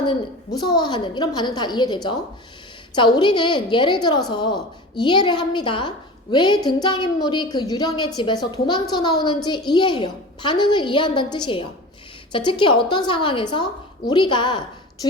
무서워하는 이런 반응 다 이해되죠? 자, 우리는 예를 들어서 이해를 합니다. 왜 등장인물이 그 유령의 집에서 도망쳐 나오는지 이해해요. 반응을 이해한다는 뜻이에요. 자, 특히 어떤 상황에서 우리가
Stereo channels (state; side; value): normal; both; correlation 0.34